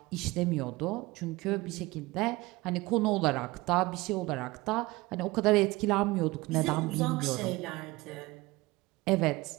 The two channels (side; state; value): left; quieter; 21.2 dB